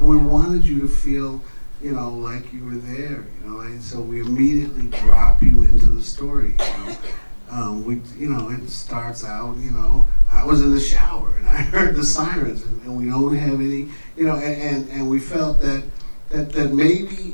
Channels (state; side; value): inverted; both; correlation -1.00